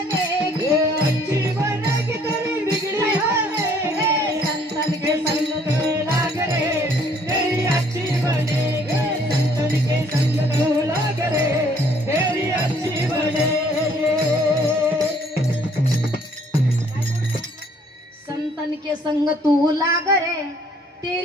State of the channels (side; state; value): both; normal; correlation 0.61